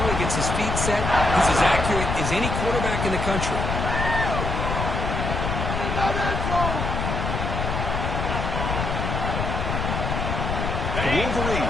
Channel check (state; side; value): noise; left; rumble, 2 dB below the sound